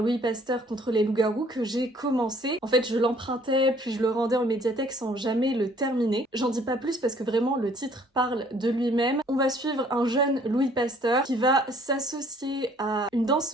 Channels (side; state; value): both; normal; correlation 0.59